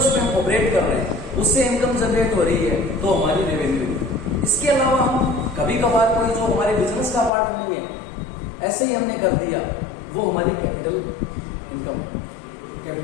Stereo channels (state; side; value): drops out; right; at 7.3 s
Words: हम ऑपरेट कर रहे हैं, उससे इनकम जनरेट हो रही है, तो हमारी रेवेन्यू। इसके अलावा हम कभी कभार कोई जो हमारे बिजनेस का पार्ट नहीं है, ऐसे ही हमने कर दिया, वो हमारी capital income,